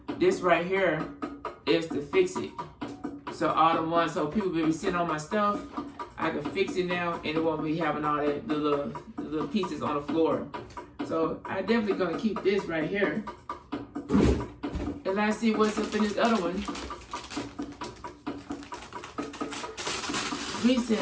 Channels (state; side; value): identical; both; correlation 1.00